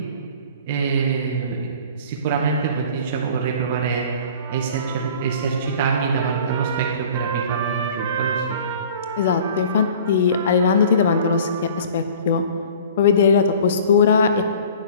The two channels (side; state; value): both; inverted; correlation -0.46